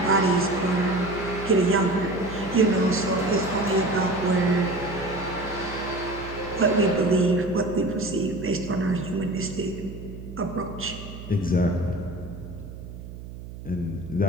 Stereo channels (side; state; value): right; noise; hum, 12 dB below the sound